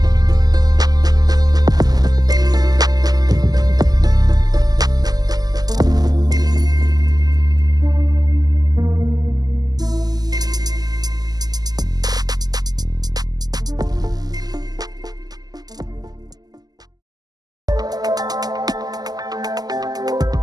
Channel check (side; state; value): left; late; 0.19 ms